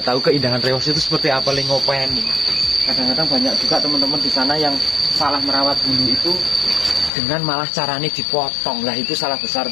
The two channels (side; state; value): right; drops out; at 7.1 s